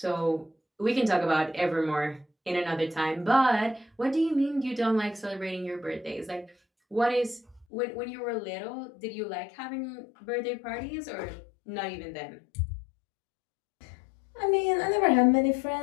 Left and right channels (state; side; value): drops out; right; at 7.7 s